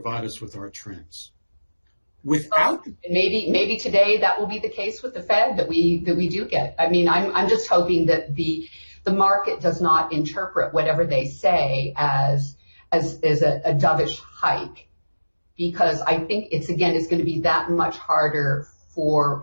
us with our trends. Without maybe today that will be the case with the Fed, that we do get. I mean, I'm just hoping that the market does not interpret whatever they say as a dovish hike, because I think it's going to be that much harder for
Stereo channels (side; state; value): both; inverted; correlation -1.00